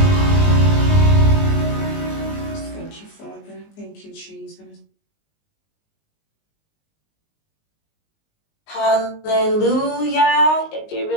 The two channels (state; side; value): late; right; 19 ms